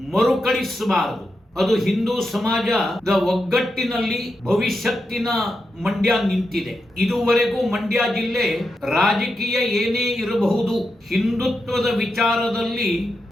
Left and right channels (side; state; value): both; normal; correlation 0.87